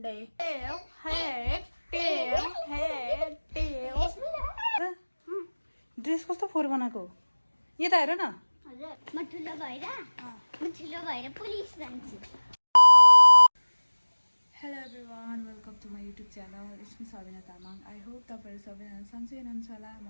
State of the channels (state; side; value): inverted; both; correlation -1.00